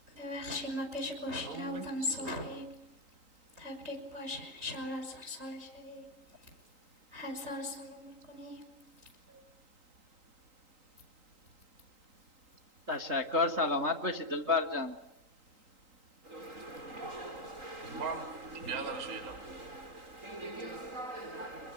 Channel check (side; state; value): left; late; 3.8 ms